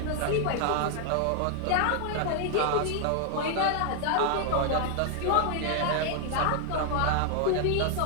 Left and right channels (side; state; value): both; different; correlation 0.00